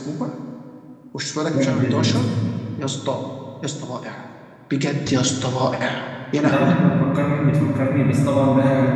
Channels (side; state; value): both; identical; correlation 1.00